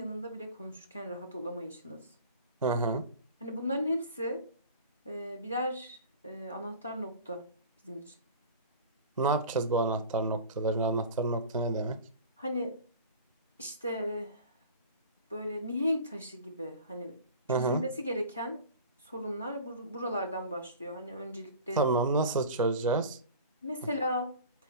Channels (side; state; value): both; inverted; correlation -0.40